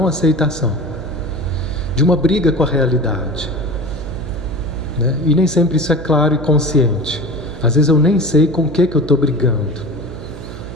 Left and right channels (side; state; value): right; noise; hum, 12 dB below the sound